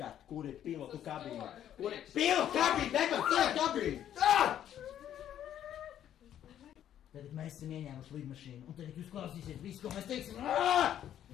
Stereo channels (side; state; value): right; quieter; 10.7 dB